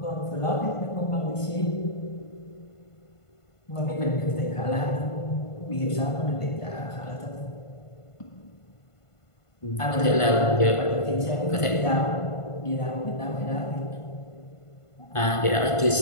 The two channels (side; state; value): right; late; 1.5 ms